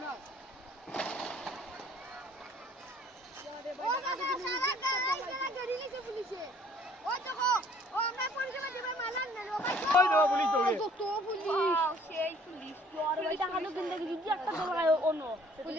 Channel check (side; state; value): both; normal; correlation 0.57